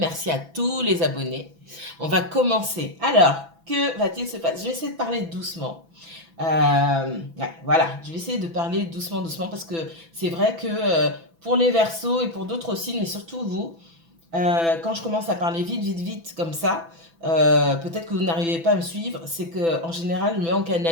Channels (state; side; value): late; left; 6.0 ms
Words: à tous les abonnés. On va commencer. Alors, que va-t-il se passer? Je vais essayer de parler doucement. Ouais, voilà, je vais essayer de parler doucement parce que c'est vrai que pour les Verseaux et pour d'autres signes, mais surtout vous, quand je commence à parler vite comme ça, peut-être que vous n'arrivez pas à me suivre, c'est que en général,